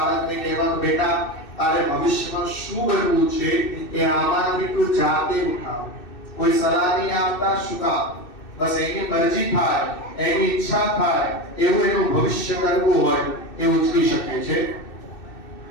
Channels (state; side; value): late; right; 2.6 ms